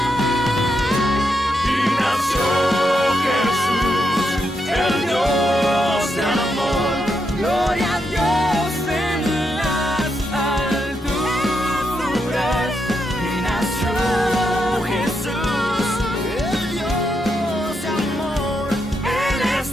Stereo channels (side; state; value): both; normal; correlation 0.82